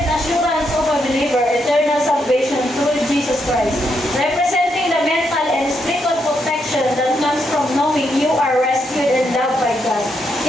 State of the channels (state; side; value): normal; both; correlation 0.79